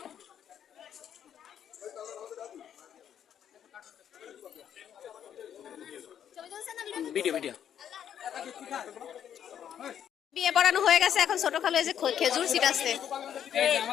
ভিডিও ভিডিও বিয়ে পড়ানো হয়ে গেছে, এখন ছোট খালু এই যে খেজুর ছিটাচ্ছে।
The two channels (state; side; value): quieter; right; 9.4 dB